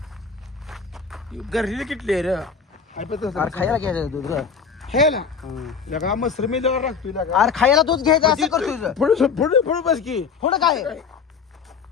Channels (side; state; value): right; quieter; 6.0 dB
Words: गरली किटली रे अरे खायला घ्यायचं दूध रे हे ना लगा मसर मी लगा लागतोय लगा अरे खायला दूध घ्यायचं असं करतोय पुढे बस की थोडं काय